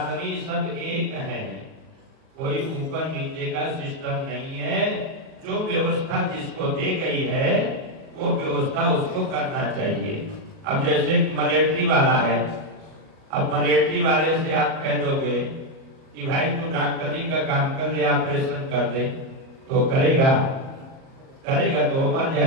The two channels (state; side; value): late; left; 38 ms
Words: सब एक है। कोई ऊपर नीचे का सिस्टम नहीं है। जो व्यवस्था जिसको दी गई है वो व्यवस्था उसको करना चाहिए। अब जैसे मलेट्री वाला है, अब मलेट्री वाले से आप कह दोगे कि भाई तू डॉक्टरी का काम कर ले, ऑपरेशन कर दे, तो करेगा तो वो मर